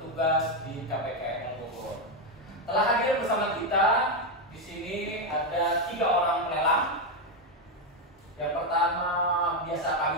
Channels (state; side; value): normal; both; correlation 0.06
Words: di KPKL Bogor. Telah hadir bersama kita di sini ada 3 orang pelelang. Yang pertama biasa